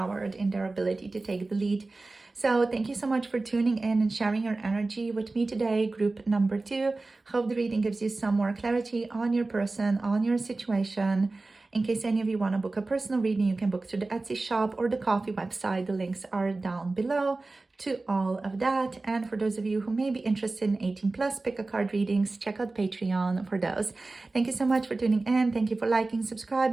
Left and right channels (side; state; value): left; quieter; 3.3 dB